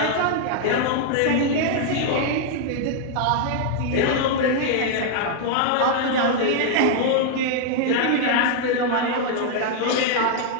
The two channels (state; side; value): different; both; correlation 0.00